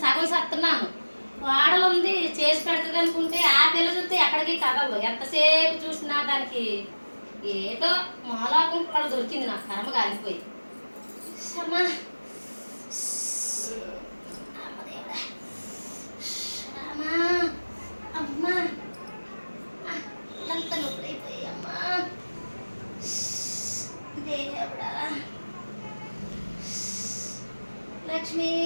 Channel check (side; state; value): both; inverted; correlation -1.00